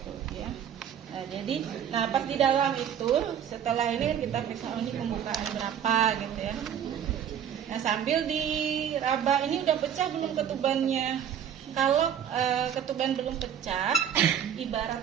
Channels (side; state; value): left; quieter; 8.9 dB